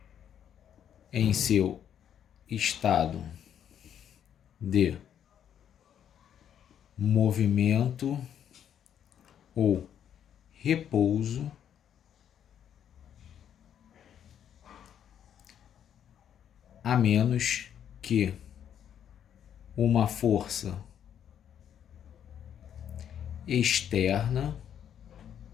em seu estado de movimento ou repouso a menos que uma força externa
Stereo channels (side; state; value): right; quieter; 9.3 dB